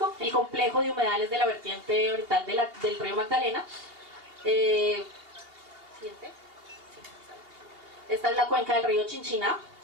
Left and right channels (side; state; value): left; late; 2.8 ms